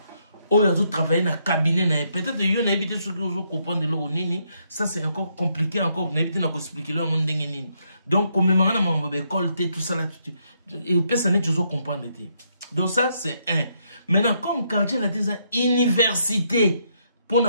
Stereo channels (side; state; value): both; inverted; correlation -0.76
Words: Oh, il a travaillé dans le cabinet. Peut-être qu'il y a évité ce que vous comprenez de l'eau. Ça, c'est encore compliqué. Encore, vous n'avez pas expliqué le monde. Donc, comme on a école, tout ça là, et personne n'est toujours comprendre. Donc, ça, c'est un. Maintenant, comme quartier, la université, pour